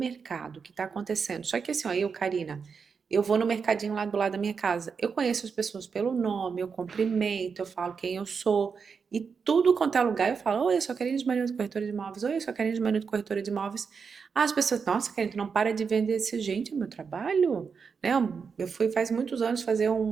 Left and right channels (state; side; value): quieter; left; 5.7 dB